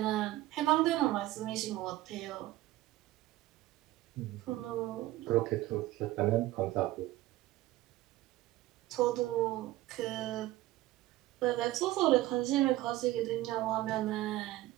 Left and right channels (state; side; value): quieter; left; 16.6 dB